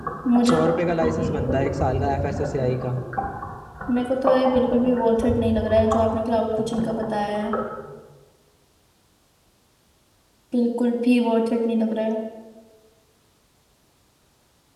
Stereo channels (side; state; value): both; identical; correlation 1.00